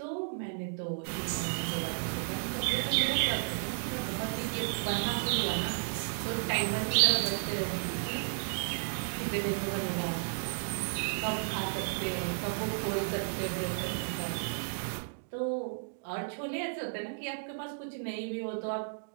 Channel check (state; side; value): silent; left; digital silence